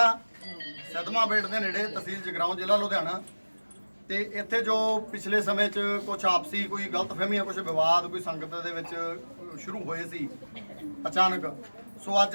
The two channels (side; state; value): both; inverted; correlation -1.00